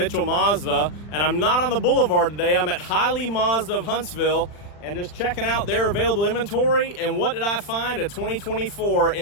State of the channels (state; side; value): late; right; 40 ms